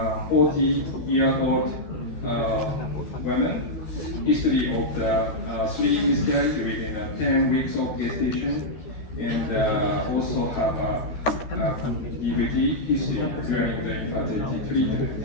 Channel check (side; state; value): right; late; 13 ms